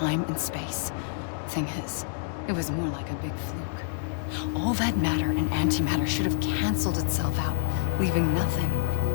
and space. Thing is, it was more like a big fluke. All that matter and antimatter should have canceled itself out, leaving nothing.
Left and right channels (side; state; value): right; silent; digital silence